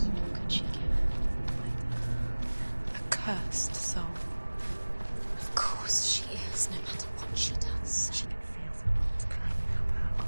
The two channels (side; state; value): both; inverted; correlation -1.00